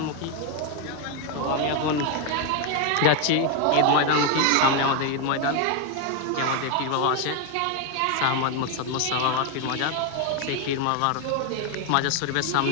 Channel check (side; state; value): both; different; correlation 0.01